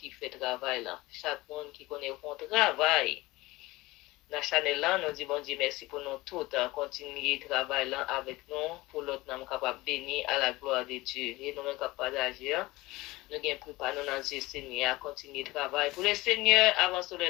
fait travail là, chaque monde qui connaît son travail. Dans la chaîne là, nous disons bon Dieu merci pour nous tous, continuer le travail là avec nous, pour l'autre nous capable de bénir à la gloire de Dieu. Et nous sommes capables d'agir. Nous avons préparé nous dans Dieu Seigneur à continuer le travail. Pour le Seigneur, avant de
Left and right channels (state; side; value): quieter; right; 20.3 dB